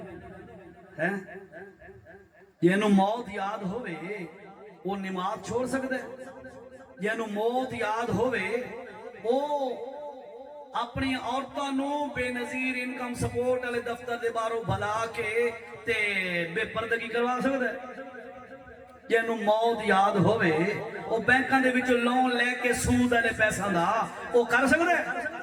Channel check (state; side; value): identical; both; correlation 1.00